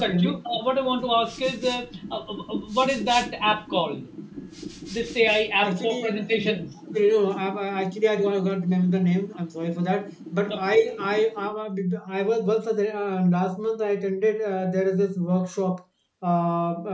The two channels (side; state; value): both; identical; correlation 1.00